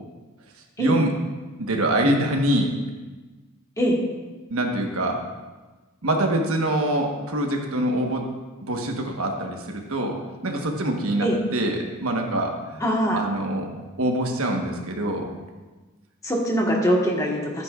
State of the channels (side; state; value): both; normal; correlation 0.41